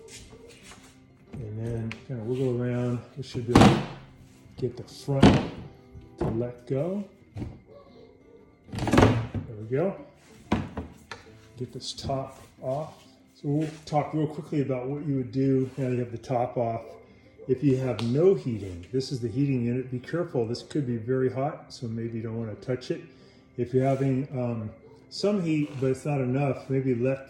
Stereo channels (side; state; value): both; identical; correlation 1.00